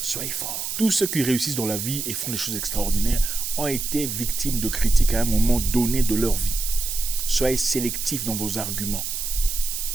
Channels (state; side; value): noise; right; hiss, 4 dB below the sound